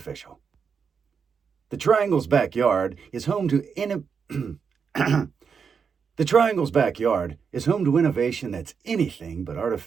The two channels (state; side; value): quieter; left; 6.2 dB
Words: The Triangle's backyard is home to The Triangle's backyard is home to innovation that's anything but